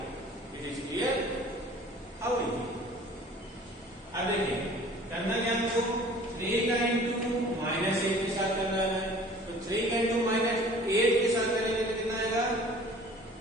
It is clear? How is it? अब देखिए करना क्या हमको, 3 का इंटू -8 के साथ करना है, तो 3 का इंटू -8 के साथ करेंगे तो कितना आएगा,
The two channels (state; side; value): normal; both; correlation 0.48